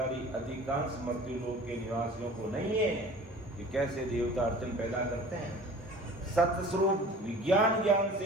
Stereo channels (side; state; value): both; normal; correlation 0.44